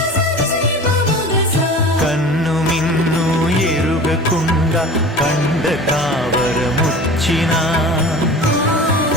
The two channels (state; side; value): normal; both; correlation 0.38